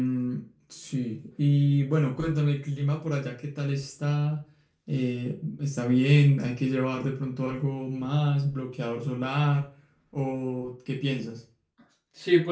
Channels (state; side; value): identical; both; correlation 1.00